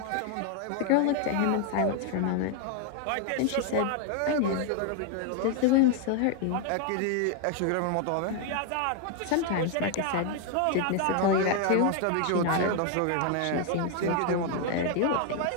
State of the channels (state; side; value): different; both; correlation 0.01